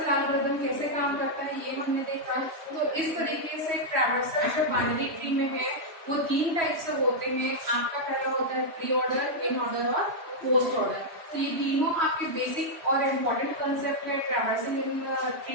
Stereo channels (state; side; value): late; left; 3.0 ms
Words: एल्गोरिथम कैसे काम करता है ये हमने देखा। तो इस तरीके से ट्रैवर्सल जो बाइनरी ट्री में है वो 3 टाइप से होते हैं। आपका पहला होता है प्री ऑर्डर, इन ऑर्डर और पोस्ट ऑर्डर। तो ये तीनों आपके बेसिक और इम्पोर्टेंट कंसेप्ट है ट्रैवर्सिंग इन